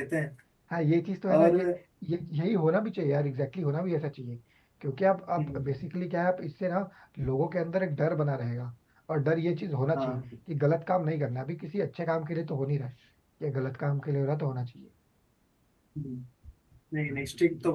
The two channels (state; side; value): identical; both; correlation 1.00